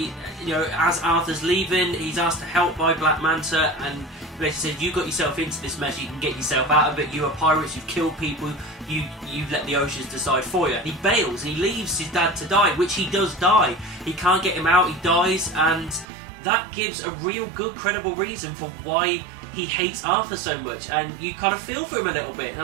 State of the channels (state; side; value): drops out; left; at 16.1 s